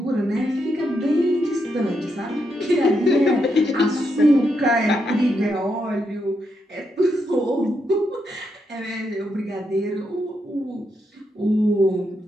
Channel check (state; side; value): normal; both; correlation 0.81